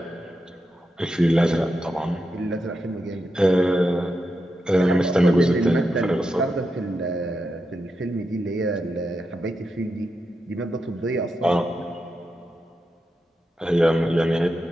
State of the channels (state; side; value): normal; both; correlation 0.87